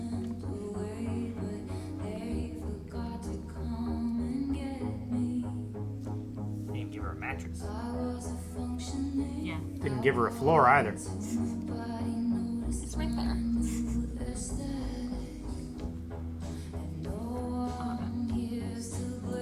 Didn't give her a mattress. Yeah. Didn't give her a floor either. It's right there.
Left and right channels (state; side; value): identical; both; correlation 1.00